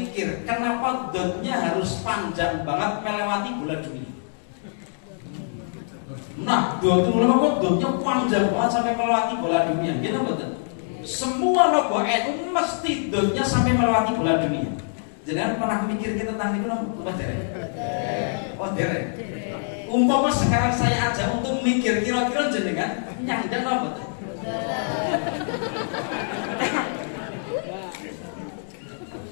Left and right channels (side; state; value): right; silent; digital silence